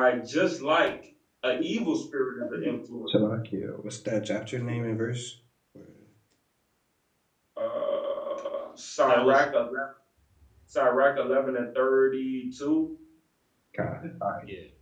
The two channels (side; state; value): both; identical; correlation 1.00